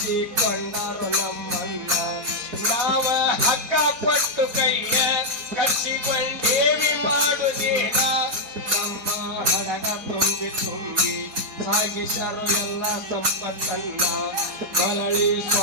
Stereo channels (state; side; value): late; left; 4.5 ms